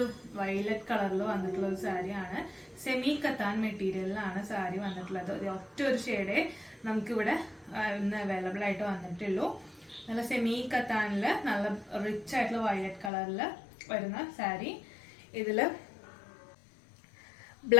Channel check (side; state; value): right; drops out; at 13.1 s